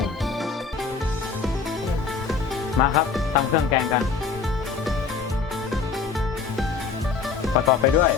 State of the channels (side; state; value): right; quieter; 5.2 dB